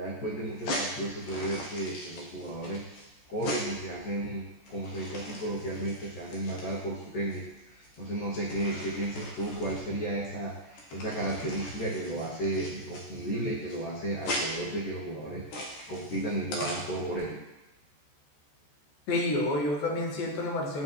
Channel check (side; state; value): right; late; 14 ms